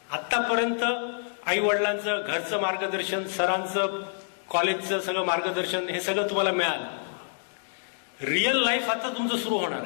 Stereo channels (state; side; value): silent; right; digital silence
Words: आत्तापर्यंत आई वडिलांचं, घरचं मार्गदर्शन, सरांचं, कॉलेजचं सगळं मार्गदर्शन, हे सगळं तुम्हाला मिळालं. रिअल लाईफ आता तुमचं सुरू होणार